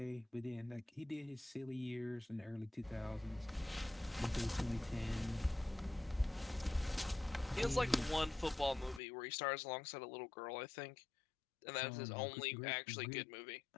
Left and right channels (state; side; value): drops out; right; at 9.0 s